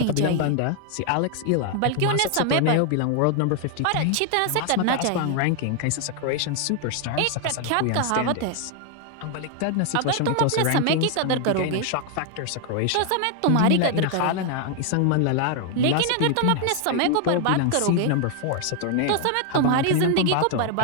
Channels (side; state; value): both; different; correlation 0.00